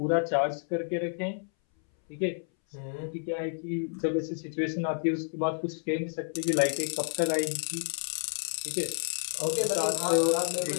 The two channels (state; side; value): silent; right; 58 dB below the other